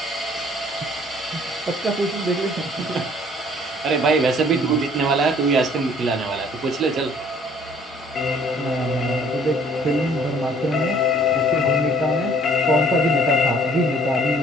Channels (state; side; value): normal; both; correlation 0.57